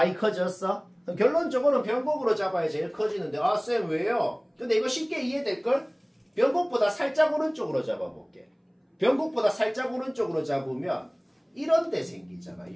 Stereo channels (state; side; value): identical; both; correlation 1.00